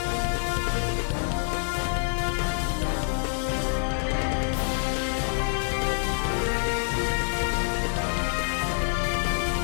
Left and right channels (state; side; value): silent; right; digital silence